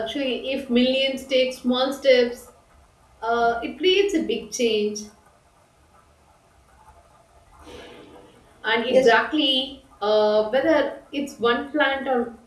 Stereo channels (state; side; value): identical; both; correlation 1.00